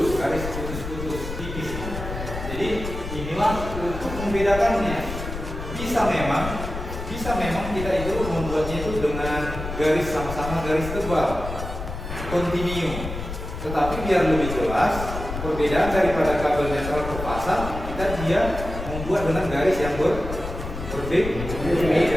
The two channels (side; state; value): left; noise; rumble, 7 dB below the sound